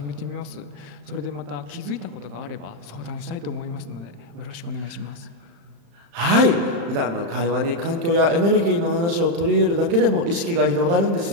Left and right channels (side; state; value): left; late; 35 ms